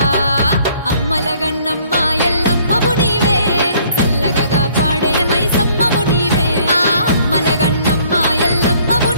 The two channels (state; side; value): inverted; both; correlation -0.60